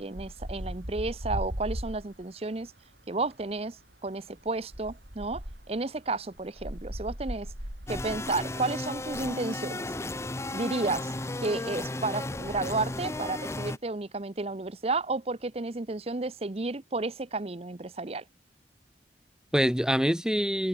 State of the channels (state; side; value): normal; both; correlation 0.43